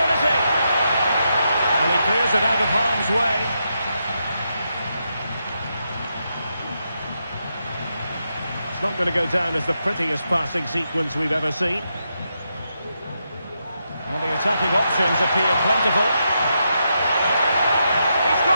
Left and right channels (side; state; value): both; inverted; correlation -0.83